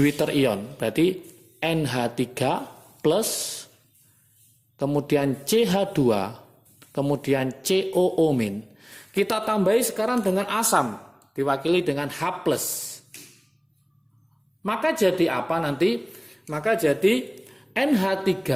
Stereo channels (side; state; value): both; identical; correlation 1.00